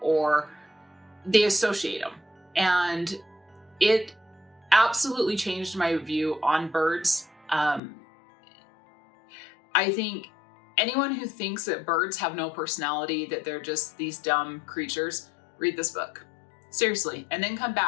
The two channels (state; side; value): drops out; right; at 7.8 s